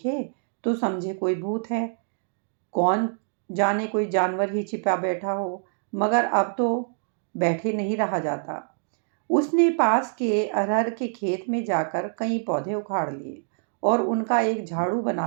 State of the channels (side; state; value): left; silent; digital silence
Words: तो समझे कोई भूत है, कौन जाने कोई जानवर ही छिपा बैठा हो। मगर अब तो बैठे नहीं रहा जाता। उसने पास के अरहर के खेत में जाकर कई पौधे उखाड़ लिए और उनका एक झाड़ू